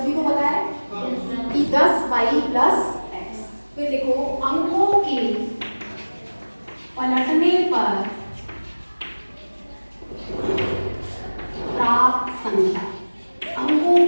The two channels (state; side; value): inverted; both; correlation -1.00